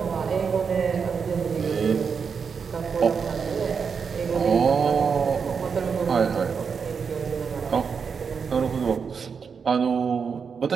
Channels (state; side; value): quieter; left; 6.0 dB